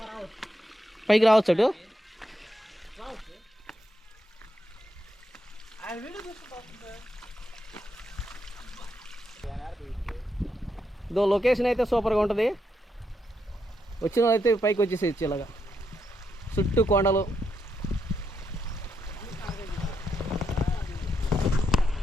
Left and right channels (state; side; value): normal; both; correlation 0.81